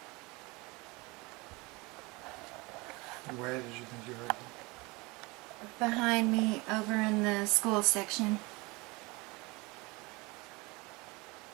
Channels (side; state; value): left; quieter; 25.1 dB